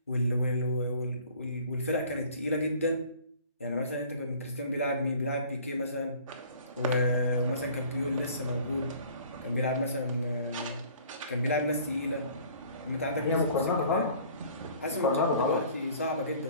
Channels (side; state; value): both; inverted; correlation -0.51